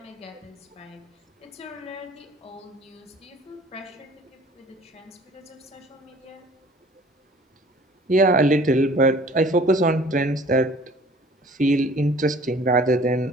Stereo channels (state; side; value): normal; both; correlation 0.50